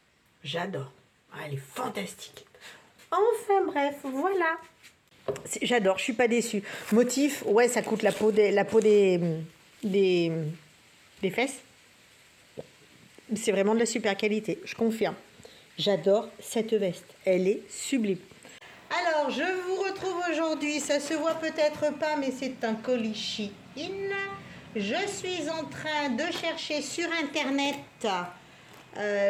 J'adore. Ah, elle est fantastique. Enfin bref, voilà. J'adore, je suis pas déçue. Motif, ouais, ça coûte la peau des fesses. C'est vraiment de la super qualité, je confirme. J'adore cette veste. Elle est sublime. Alors, je vous retrouve aujourd'hui. Ça se voit peut-être pas, mais c'est un colis Shein. Je suis en train de chercher sur Internet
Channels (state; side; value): identical; both; correlation 1.00